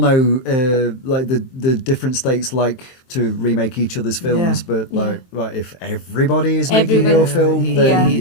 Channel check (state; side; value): late; right; 23 ms